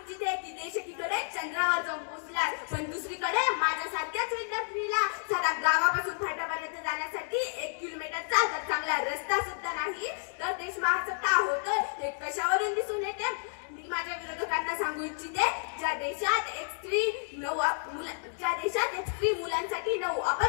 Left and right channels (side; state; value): right; silent; digital silence